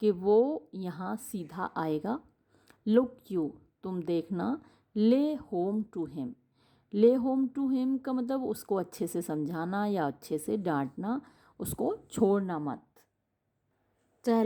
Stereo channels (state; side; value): identical; both; correlation 1.00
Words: कि वो यहाँ सीधा आएगा। लुक यू, तुम देखना। ले होम टू हिम। ले होम टू हिम का मतलब उसको अच्छे से समझाना या अच्छे से डांटना, उसको छोड़ना मत।